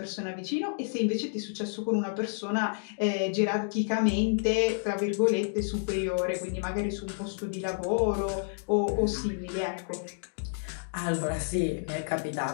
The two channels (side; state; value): right; silent; digital silence